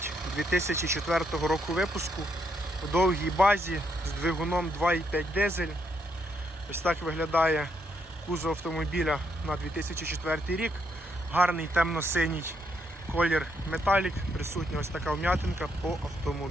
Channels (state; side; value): normal; both; correlation 0.76